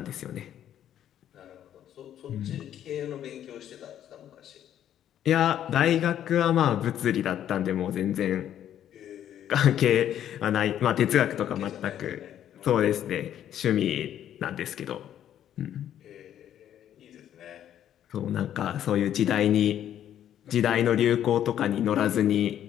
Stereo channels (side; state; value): right; quieter; 10.7 dB